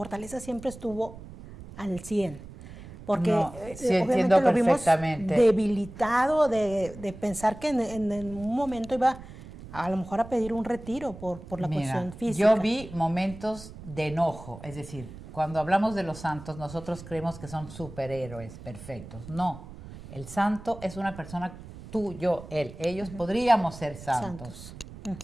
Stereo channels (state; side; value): noise; right; rumble, 15 dB below the sound